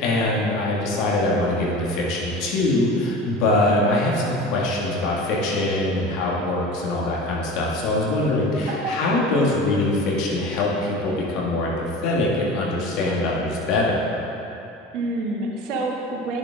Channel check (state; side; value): normal; both; correlation 0.35